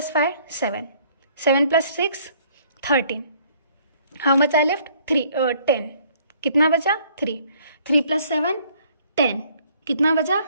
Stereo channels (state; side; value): inverted; both; correlation -0.61